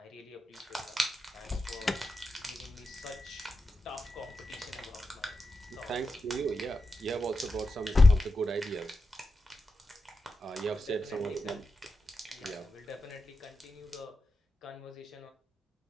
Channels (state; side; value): normal; both; correlation 0.89